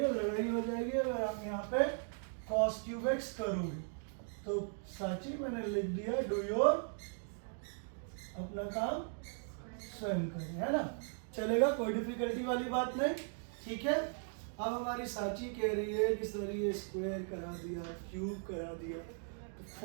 है लड़ाई हो जाएगी अगर आप यहाँ पे cos क्यूब x करोगे। तो साची मैंने लिख दिया, डू योर अपना काम स्वयं करें, है ना, चलेगा, कोई डिफिकल्टी वाली बात नहीं, ठीक है। अब हमारी साची कह रही है कि सर ये स्क्वायर करा दिया, क्यूब करा दिया, तो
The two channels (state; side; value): silent; left; 52 dB below the other